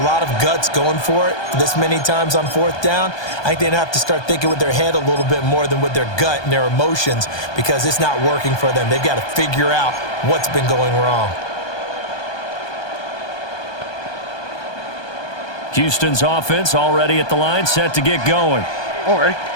lot of guts going for it this many times on 4th down. I think they'd have to start thinking with their head a little bit more than with their gut and their emotions because it's not working for them. They've got to figure out what's been going wrong. Houston's offense already at the line, set to get going. All right.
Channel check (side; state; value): right; late; 1.2 ms